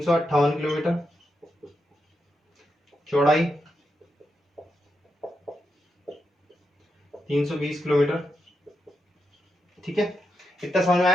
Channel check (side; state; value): both; normal; correlation 0.85